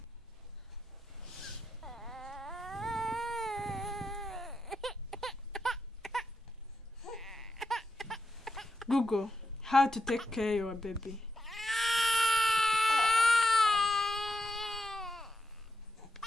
Google how to take care of your baby.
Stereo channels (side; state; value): both; normal; correlation 0.84